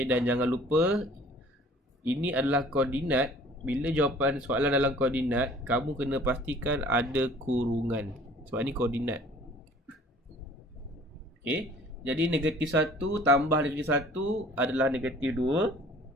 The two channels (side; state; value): both; normal; correlation 0.51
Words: dan jangan lupa ini adalah koordinat. Bila jawapan soalan dalam koordinat, kamu kena pastikan ada kurungan, sebab ni koordinat. Okay, jadi negatif 1 tambah negatif 1 adalah negatif 2.